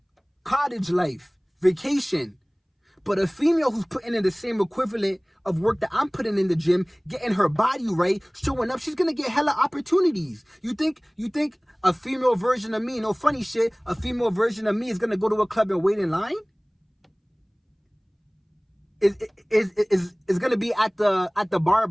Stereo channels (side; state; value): both; identical; correlation 1.00